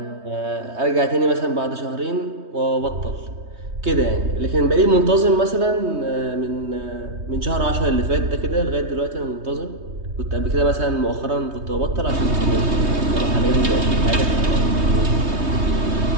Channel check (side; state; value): left; late; 3.2 ms